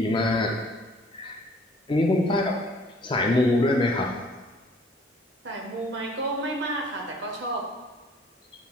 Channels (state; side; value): normal; both; correlation 0.56